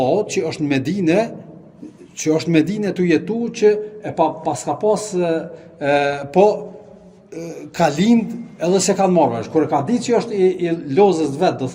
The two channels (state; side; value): identical; both; correlation 1.00